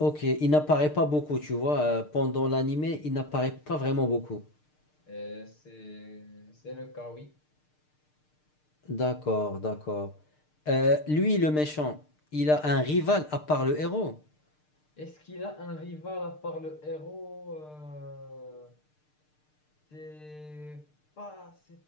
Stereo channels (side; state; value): right; late; 6.6 ms